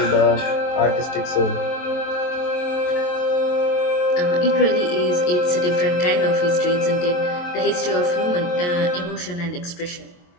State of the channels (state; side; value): late; right; 23 ms